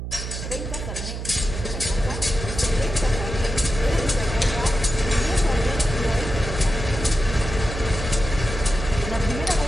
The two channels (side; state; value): right; noise; hum, 6 dB below the sound